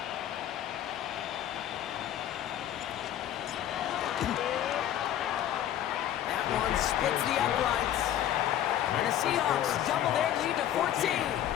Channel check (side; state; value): right; quieter; 11.4 dB